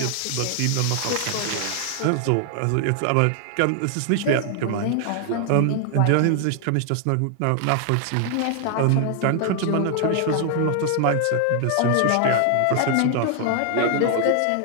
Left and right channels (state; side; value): different; both; correlation 0.00